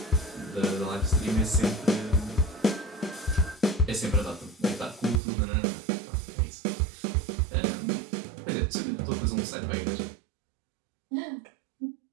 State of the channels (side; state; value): left; drops out; at 5.2 s